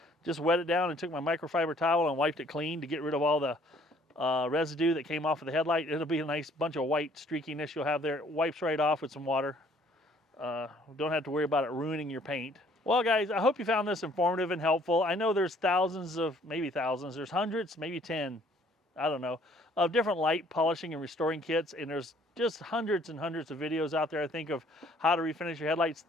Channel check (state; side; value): normal; both; correlation 0.60